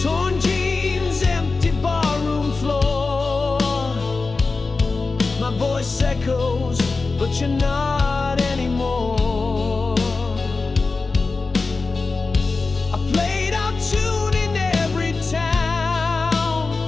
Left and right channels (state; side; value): quieter; right; 4.0 dB